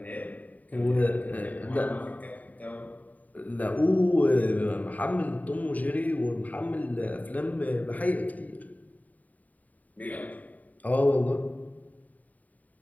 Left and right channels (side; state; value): right; late; 0.074 ms